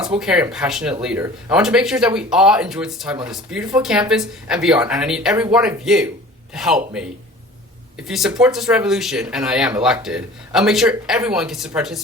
caring, and passionate leader, I want to make sure that we all enjoy this time on this beautiful campus and beyond. And I need every one of you to help me. If you support this revolution, and I am elected, I'll make sure everyone gets to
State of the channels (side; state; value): both; normal; correlation 0.44